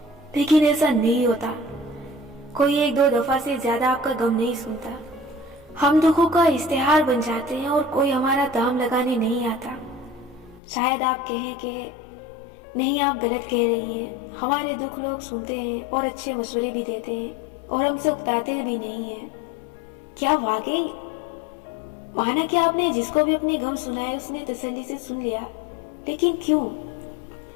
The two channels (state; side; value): drops out; right; at 10.6 s